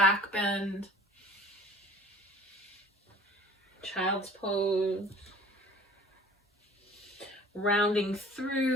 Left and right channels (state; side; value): normal; both; correlation 0.48